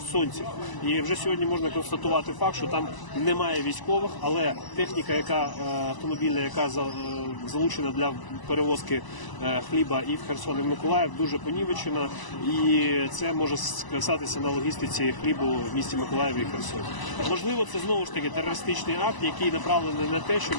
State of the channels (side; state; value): right; late; 1.0 ms